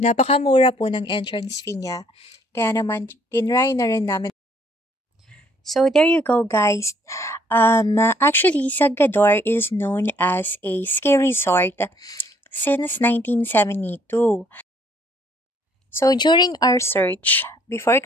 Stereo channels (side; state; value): both; normal; correlation 0.64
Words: po ng entrance fee niya. Kaya naman, tinry na rin namin. So, there you go, guys. Actually, Sagador is known as a ski resort since 1972. So, during our search, before